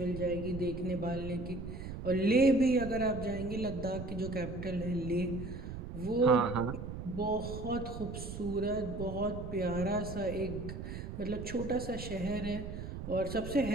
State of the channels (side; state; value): right; noise; rumble, 8 dB below the sound